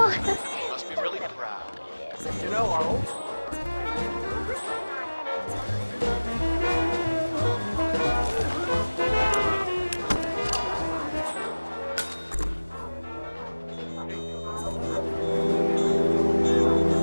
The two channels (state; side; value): inverted; both; correlation -1.00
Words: Must be really proud. You know, our old